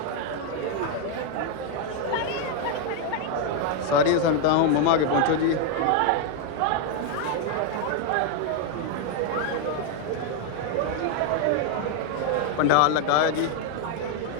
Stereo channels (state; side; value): different; both; correlation 0.00